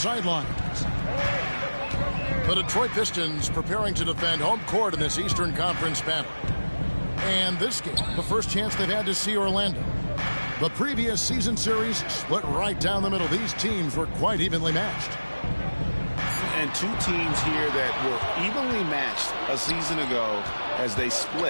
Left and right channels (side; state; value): both; inverted; correlation -1.00